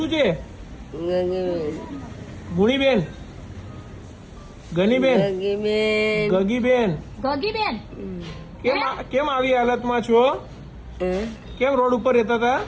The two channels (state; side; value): identical; both; correlation 1.00